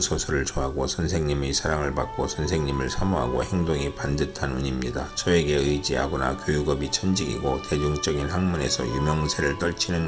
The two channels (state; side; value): identical; both; correlation 1.00